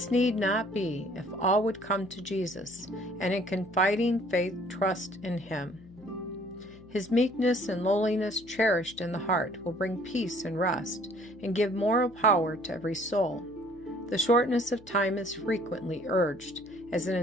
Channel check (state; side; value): noise; left; hum, 24 dB below the sound